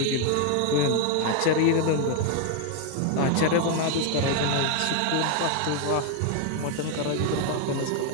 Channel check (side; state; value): both; different; correlation 0.01